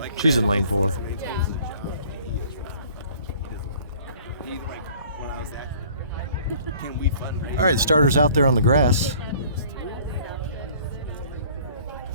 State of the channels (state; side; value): inverted; both; correlation -0.52